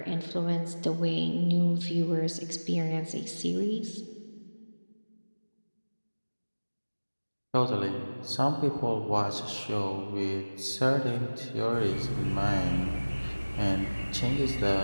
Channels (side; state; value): both; inverted; correlation -1.00